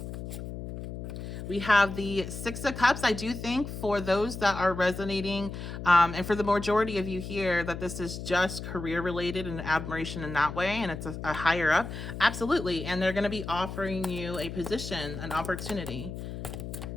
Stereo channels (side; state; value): left; noise; hum, 8 dB below the sound